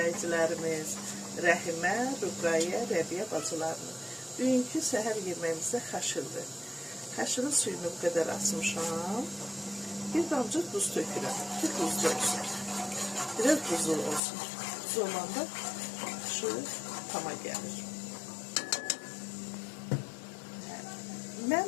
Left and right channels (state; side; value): drops out; right; at 14.2 s